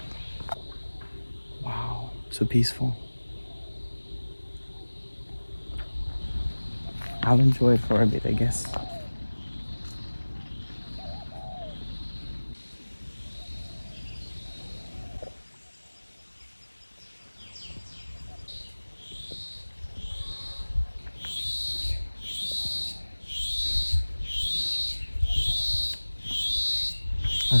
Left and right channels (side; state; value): both; inverted; correlation -1.00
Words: Wow, so peaceful. I'll enjoy it for a bit, I guess.